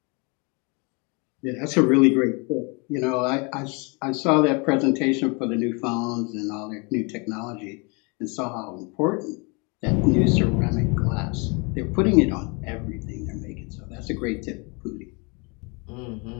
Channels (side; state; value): right; quieter; 31.4 dB